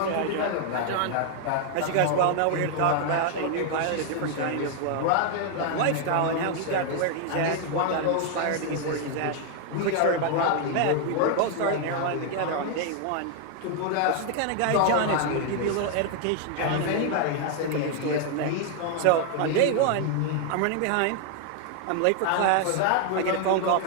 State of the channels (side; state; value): both; different; correlation 0.00